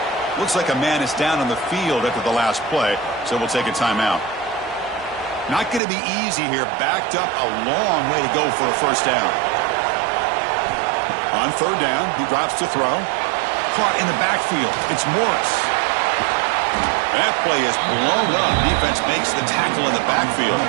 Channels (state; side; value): drops out; left; at 5.8 s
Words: Looks like a man is down on the field after the last play, so we'll take a timeout. Not going to be easy here. Backed up a long way to go for a first down. On third down, he drops to throw. Caught in the backfield. It's Morris. That play is blown up. Defense makes the tackle in the backfield.